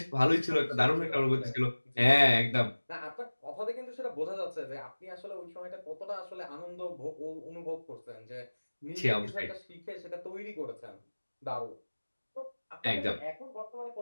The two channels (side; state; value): both; inverted; correlation -1.00